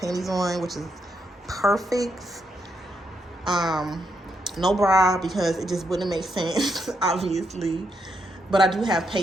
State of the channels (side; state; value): both; normal; correlation 0.80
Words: on, which is perfect. No bra because it just wouldn't make sense, obviously. But I do have